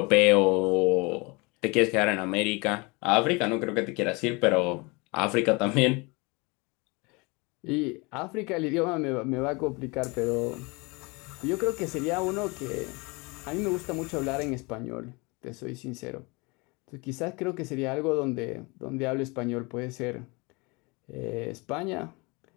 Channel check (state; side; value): quieter; right; 27.4 dB